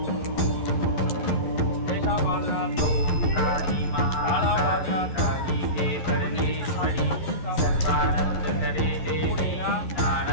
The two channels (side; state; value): right; late; 11 ms